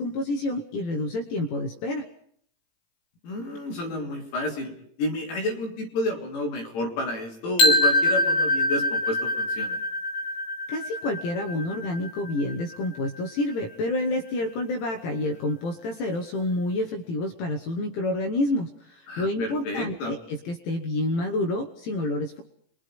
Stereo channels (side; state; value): right; late; 18 ms